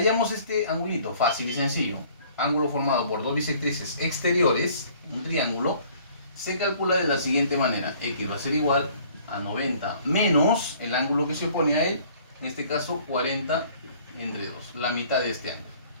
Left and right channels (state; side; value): inverted; both; correlation -0.55